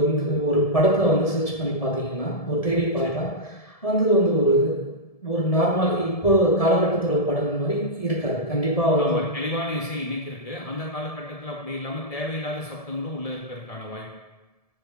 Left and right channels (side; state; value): right; late; 1.7 ms